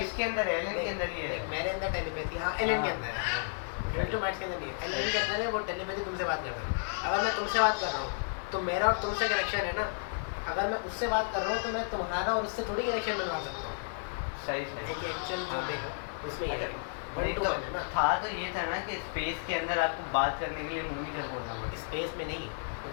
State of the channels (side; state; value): right; silent; digital silence